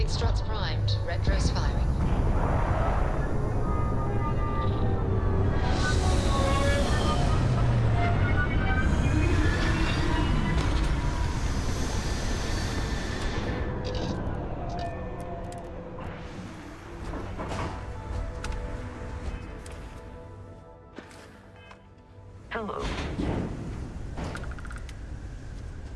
struts primed. Retros firing. Hello.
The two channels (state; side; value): identical; both; correlation 1.00